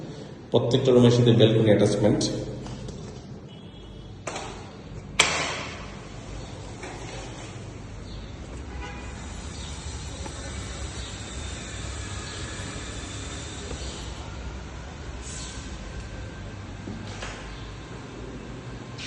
প্রত্যেকটা রুমের সাথে ব্যালকনি অ্যাটাচমেন্ট।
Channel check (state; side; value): identical; both; correlation 1.00